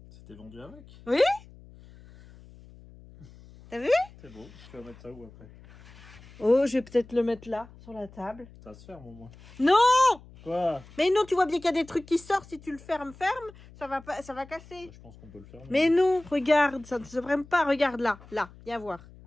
C'était vendu avec? Oui. T'as vu? C'est beau. Tu vas mettre ça où après? Oh, je vais peut-être le mettre là, sur la table. Ça se ferme au moins. Non! Quoi? Mais non, tu vois bien qu'il y a des trucs qui sortent. Si tu le fermes, ça va casser. Bah, je pense qu'on peut le fermer. Mais non, regarde, ça ne se ferme pas. Regarde là, viens voir.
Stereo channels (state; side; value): noise; left; hum, 21 dB below the sound